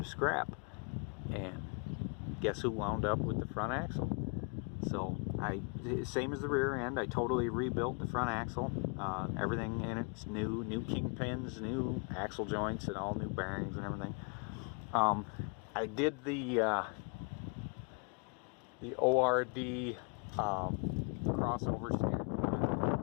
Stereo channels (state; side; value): quieter; right; 36.7 dB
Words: to scrap, and guess who wound up with the front axle? So same as the rear end, I totally rebuilt the front axle. Everything in it's new kingpins, new axle joints, and all new bearings and everything. I did the ORD crossover steering.